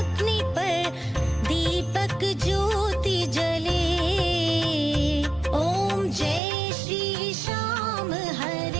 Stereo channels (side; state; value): left; drops out; at 6.4 s